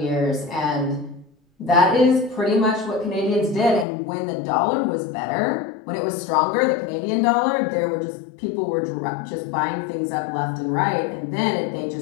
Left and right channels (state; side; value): drops out; right; at 3.9 s